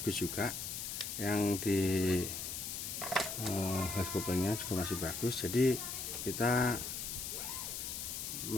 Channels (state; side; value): noise; left; hiss, 5 dB below the sound